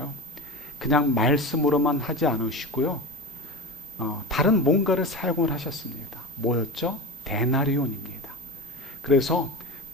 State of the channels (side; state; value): both; normal; correlation 0.27